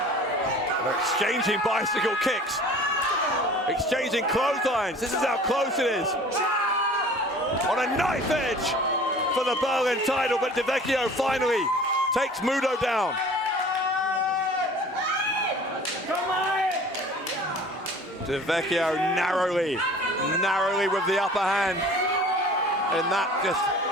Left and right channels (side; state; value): both; normal; correlation 0.46